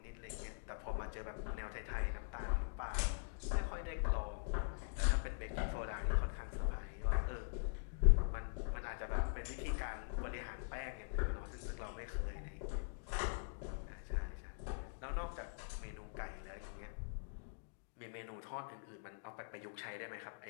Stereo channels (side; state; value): right; silent; digital silence